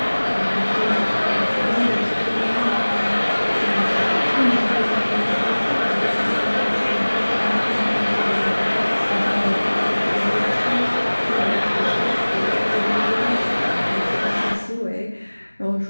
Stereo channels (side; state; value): both; inverted; correlation -1.00